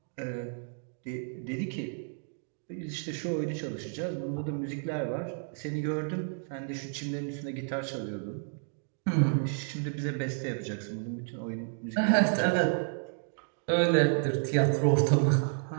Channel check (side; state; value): left; silent; 57 dB below the other